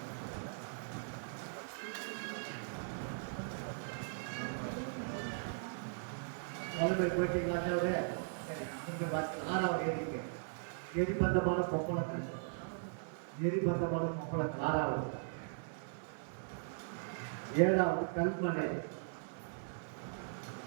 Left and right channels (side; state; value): left; silent; digital silence